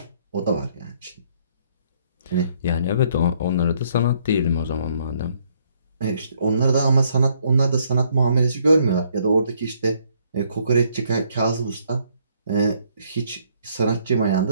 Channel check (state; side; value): inverted; both; correlation -0.68